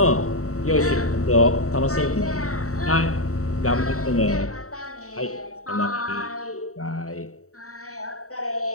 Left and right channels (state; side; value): late; right; 0.65 ms